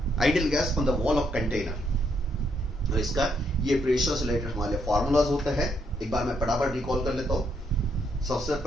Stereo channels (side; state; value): both; normal; correlation 0.74